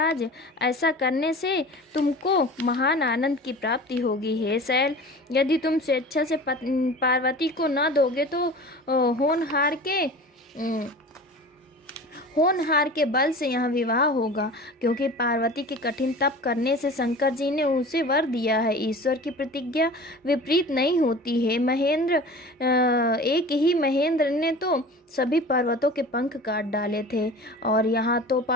ऐसा करने से तुमको महान आनंद की प्राप्ति होगी। हे शैल, यदि तुम स्वेच्छा से पार्वती को न दोगे तो होनहार के बल से यहाँ विवाह होगा, क्योंकि पार्वती के कठिन तप करने से शंकर जी ने उसे वर दिया है। ईश्वर की प्रतिज्ञा विपरीत नहीं होती है महेंद्र। एक ही महेंद्र ने तो सभी पर्वतों के पंख काट डाले थे, और यहाँ तो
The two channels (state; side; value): normal; both; correlation 0.38